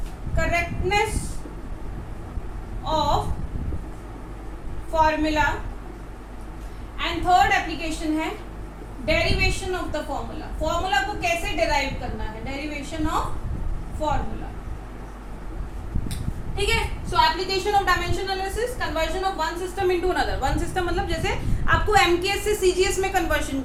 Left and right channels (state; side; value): identical; both; correlation 1.00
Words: correctness of formula, and third application है derivation of the formula, formula को कैसे डिराइव करना है, डेरिवेशन ऑफ फॉर्मूला, ठीक है। सो application of dimension analysis, conversion of one system into another. One system मतलब जैसे आपको एमकेएस से सीजीएस में कन्वर्जन